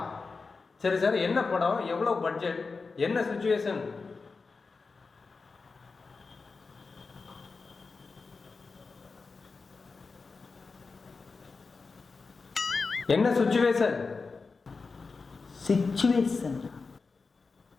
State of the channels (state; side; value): quieter; right; 4.4 dB